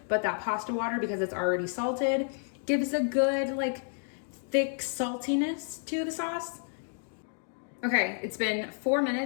But that pasta water, because it's already salted, gives a good, like, thick saltiness to the sauce. Okay, it's been 4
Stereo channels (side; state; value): right; silent; 57 dB below the other